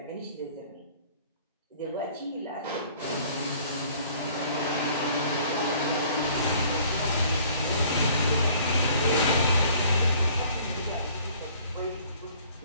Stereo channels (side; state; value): both; inverted; correlation -0.55